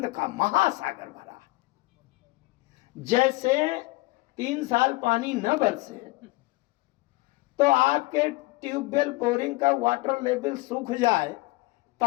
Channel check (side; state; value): right; quieter; 22.6 dB